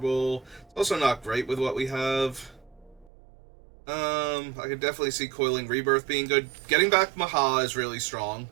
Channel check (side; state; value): left; drops out; at 3.1 s